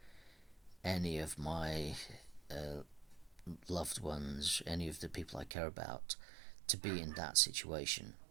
any of my loved ones, any of the people I care about, to be in that situation.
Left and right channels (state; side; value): drops out; left; at 5.6 s